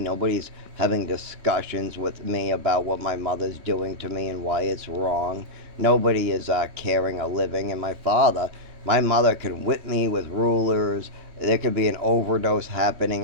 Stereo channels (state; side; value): late; left; 3.1 ms